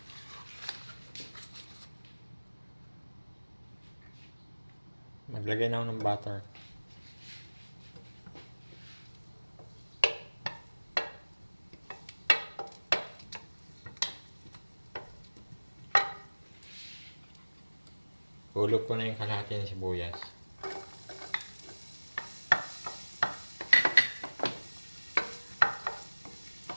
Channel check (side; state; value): both; inverted; correlation -1.00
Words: Maglagay na ako ng butter. Hulog ko na yung kalahati ng sibuyas.